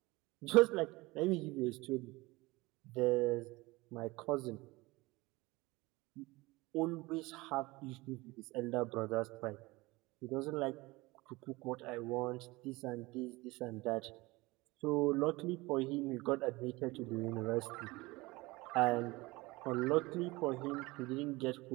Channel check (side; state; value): left; quieter; 22.1 dB